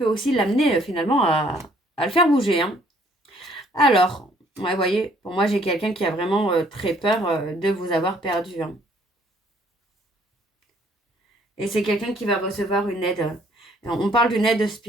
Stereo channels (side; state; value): both; normal; correlation 0.62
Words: aussi l'amener finalement à le faire bouger. Hein. Alors, ouais, vous voyez, pour moi, j'ai quelqu'un qui a vraiment très peur de vous avoir perdu. Hein. Et c'est quelqu'un qui va recevoir une aide. On parle d'une aide